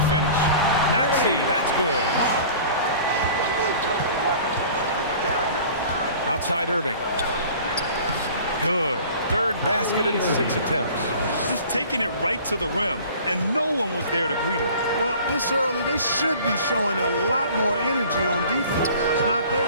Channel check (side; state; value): both; inverted; correlation -0.45